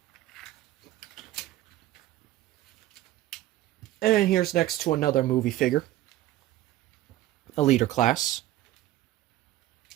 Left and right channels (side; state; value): left; quieter; 14.9 dB